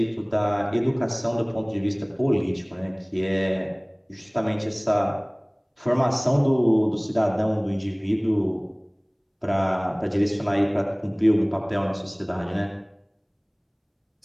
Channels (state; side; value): identical; both; correlation 1.00